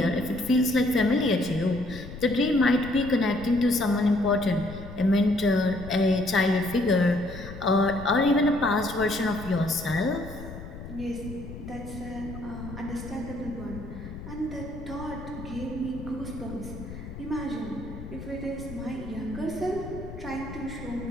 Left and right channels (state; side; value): noise; left; rumble, 12 dB below the sound